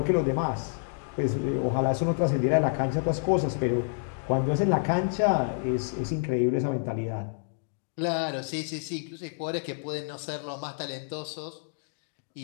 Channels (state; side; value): silent; right; digital silence